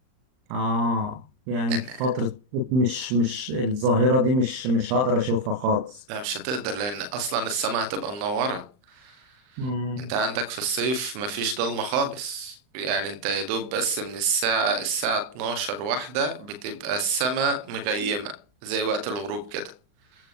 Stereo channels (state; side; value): late; left; 39 ms